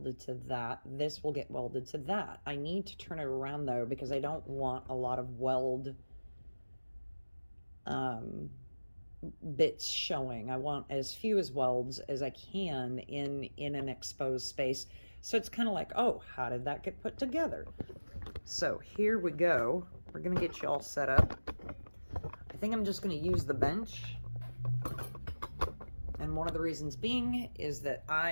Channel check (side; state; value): both; inverted; correlation -1.00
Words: to that. This will get welded to that. I need to turn it around though, because I don't want a lot of weld bits showing. I want as few as welds as I can in an exposed space. So it's kind of like, oh, how did that get put together? So here we go. We're going to get you all set up. I think I'm just going to use the bench. And one of the reasons being is that